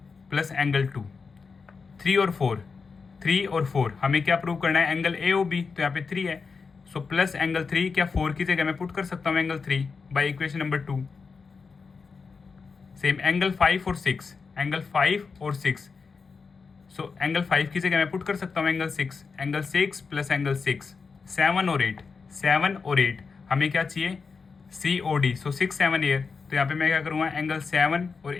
प्लस एंगल 2, 3 और 4, 3 और 4 हमें क्या प्रूव करना है, एंगल ए ओ बी, तो यहाँ पे 3 है। सो प्लस एंगल 3 क्या 4 की जगह मैं पुट कर सकता हूँ angle 3 by equation number 2। Same angle 5 और 6, एंगल 5 और 6, सो एंगल 5 की जगह मैं पुट कर सकता हूँ एंगल 6, एंगल 6 प्लस एंगल 6, 7 और 8, 7 और 8 हमें क्या चाहिए सी ओ डी। सो 6 7 एयर, तो यहाँ पे मैं क्या करूँगा एंगल 7 और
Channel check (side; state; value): right; quieter; 5.0 dB